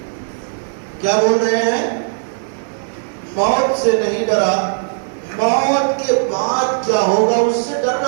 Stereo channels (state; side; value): silent; left; 63 dB below the other